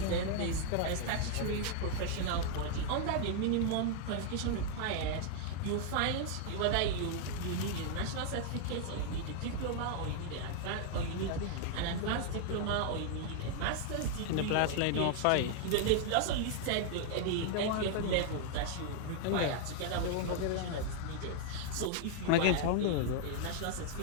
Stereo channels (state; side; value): different; both; correlation 0.00